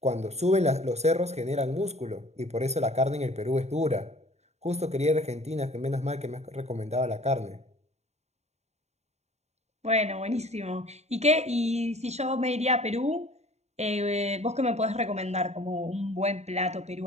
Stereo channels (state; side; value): late; left; 0.32 ms